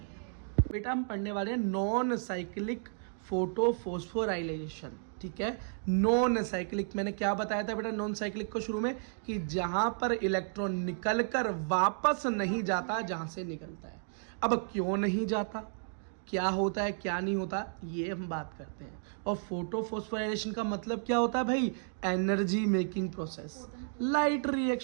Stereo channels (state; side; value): silent; left; digital silence